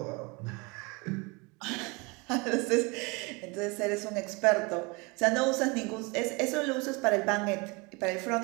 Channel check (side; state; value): left; quieter; 28.0 dB